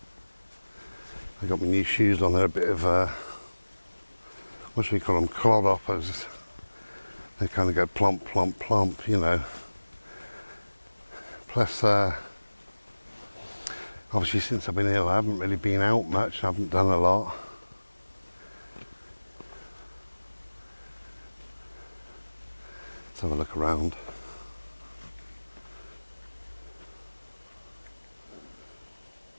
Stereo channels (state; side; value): inverted; both; correlation -1.00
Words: I got my new shoes on. They're a bit of what should we call them? Clodhoppers. They kind of go plump, plump, plump, you know. Plus, obviously since I've been ill, I haven't really been out much. I haven't done a lot. Let's have a look around.